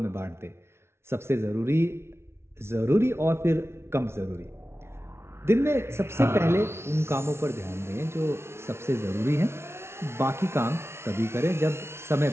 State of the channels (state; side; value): late; left; 0.12 ms